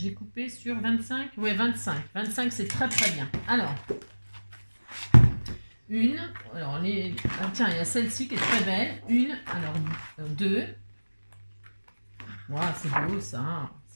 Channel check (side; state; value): both; inverted; correlation -1.00